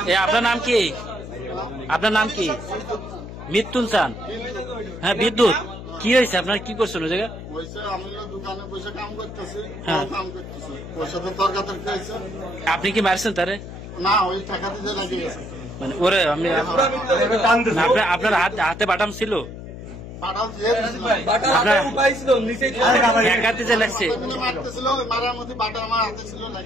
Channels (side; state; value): left; noise; hum, 11 dB below the sound